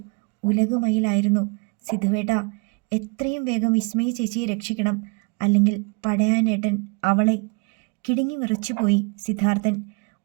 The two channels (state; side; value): quieter; left; 30.9 dB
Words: ഉലകുമയിലായിരുന്നു. സിദ്ധുവേട്ടാ, എത്രയും വേഗം വിസ്മയ ചേച്ചിയെ രക്ഷിക്കണം. അല്ലെങ്കിൽ പടയാനേട്ടൻ അവളെ. കിടുങ്ങി വിറച്ചുപോയി സിദ്ധാർത്ഥൻ.